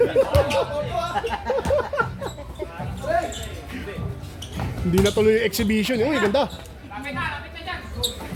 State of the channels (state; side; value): identical; both; correlation 1.00